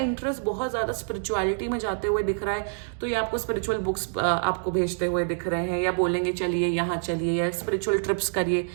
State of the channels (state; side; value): silent; left; digital silence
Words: बहुत ज्यादा स्पिरिचुअलिटी में जाते हुए दिख रहा है, तो ये आपको स्पिरिचुअल बुक्स आपको भेजते हुए दिख रहे हैं, या बोलेंगे चलिए यहाँ चलिए, या स्पिरिचुअल ट्रिप्स करिए।